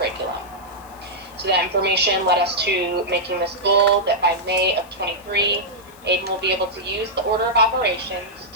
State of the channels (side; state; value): left; noise; hiss, 25 dB below the sound